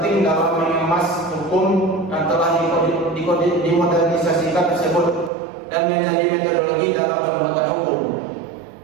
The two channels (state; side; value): drops out; left; at 5.3 s